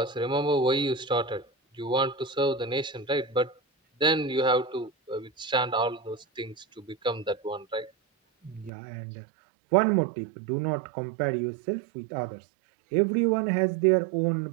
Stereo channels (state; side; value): drops out; left; at 8.7 s